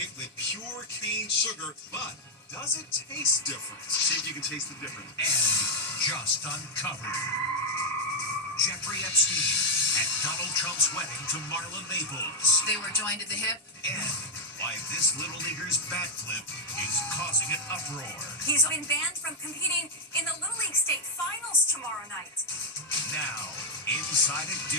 with pure cane sugar, but does it taste different? See if you can taste the difference. And just uncovered. Jeffrey Epstein at Donald Trump's wedding to Marla Maples. They were joined at the hip. And why this Little Leaguer's backflip is causing an uproar. He's been banned from competing in the Little League State Finals tomorrow night. Now, Inside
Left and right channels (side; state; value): both; normal; correlation 0.01